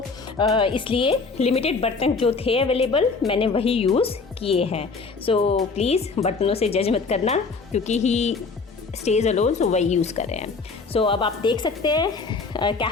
इसलिए लिमिटेड बर्तन जो थे अवेलेबल मैंने वही यूज़ किए हैं। सो प्लीज़ बर्तनों से जज मत करना, क्योंकि ही स्टेज अलोन, सो वही यूज़ कर रहे हैं। सो अब आप देख सकते हैं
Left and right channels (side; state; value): right; quieter; 4.4 dB